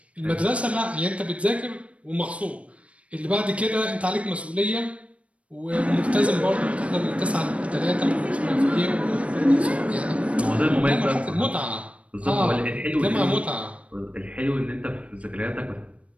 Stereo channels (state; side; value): late; left; 0.063 ms